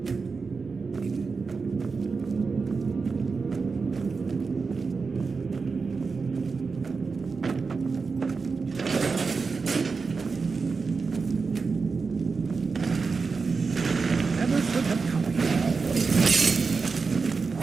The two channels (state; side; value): quieter; left; 4.7 dB